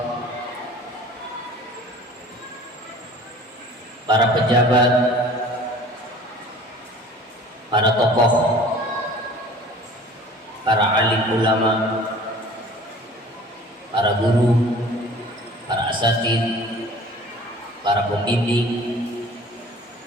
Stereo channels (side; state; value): both; normal; correlation 0.46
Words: para pejabat, para tokoh, para alim ulama, para guru, para asatid, para pembimbing,